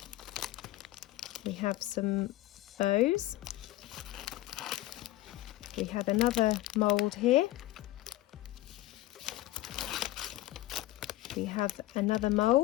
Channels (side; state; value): right; quieter; 16.3 dB